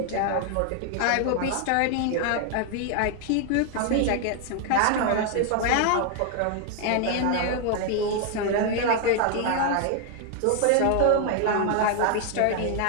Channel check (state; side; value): different; both; correlation 0.00